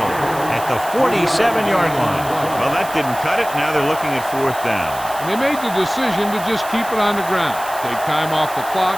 at the 47-yard line. Well, that didn't cut it. Now they're looking at 4th down. And they made the decision to just keep it on the ground. Take time off the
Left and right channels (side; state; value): right; noise; hiss, 14 dB below the sound